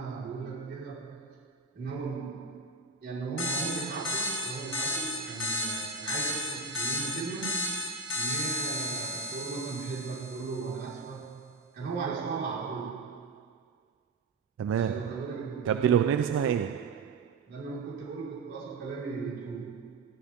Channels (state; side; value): quieter; left; 3.8 dB